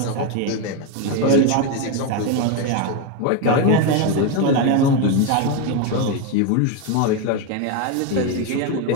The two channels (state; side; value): different; both; correlation 0.02